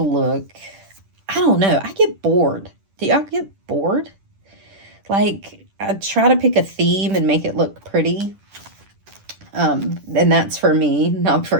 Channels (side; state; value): left; late; 10 ms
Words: look. I don't know. I get bored. Do y'all get bored? Like, I try to pick a theme and make it look pretty. And that's for me, not for